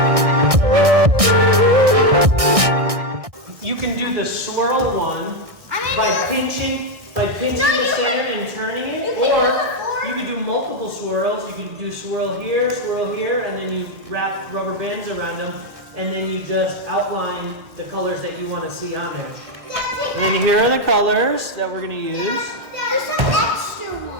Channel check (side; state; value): left; late; 1.6 ms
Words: You can do the swirl one by pinching the center and turning it, or you could do multiple swirls. You could do swirl here, and then you wrap rubber bands around them, and then you just outline the colors that you want to see on them. And then here are the colors that we're going to use. There's some extra